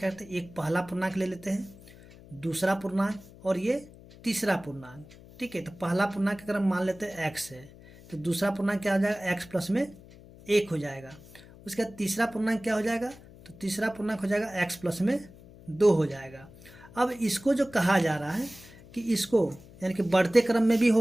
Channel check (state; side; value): noise; left; hum, 21 dB below the sound